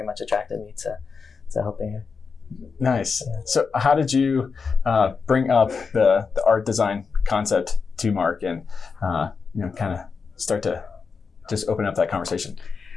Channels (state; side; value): quieter; right; 5.2 dB